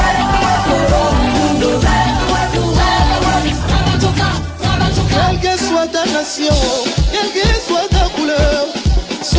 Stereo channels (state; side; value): identical; both; correlation 1.00